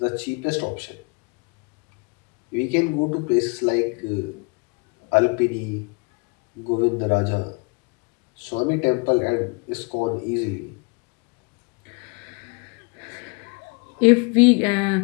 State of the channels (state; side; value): quieter; right; 31.3 dB